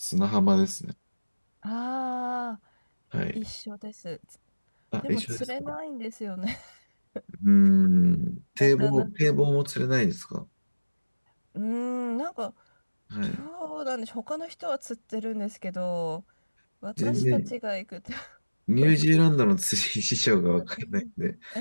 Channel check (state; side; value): inverted; both; correlation -1.00